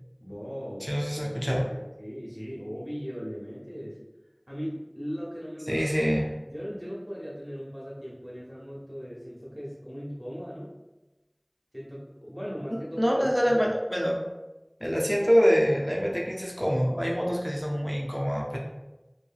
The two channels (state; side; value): identical; both; correlation 1.00